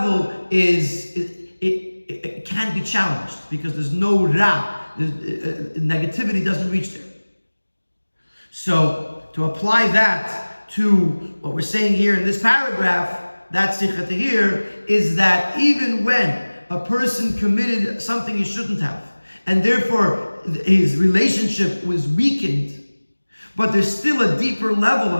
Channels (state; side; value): inverted; both; correlation -1.00